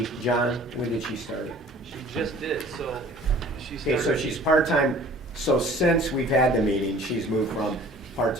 John, when did she start? She just did, so she Okay, started. so she's part-time, so since we've had the meeting, she's moved from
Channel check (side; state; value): both; normal; correlation 0.49